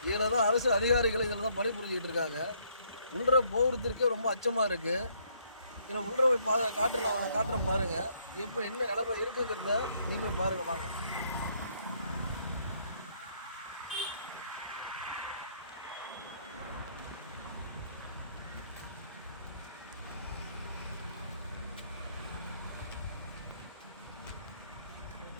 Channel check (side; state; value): both; inverted; correlation -0.68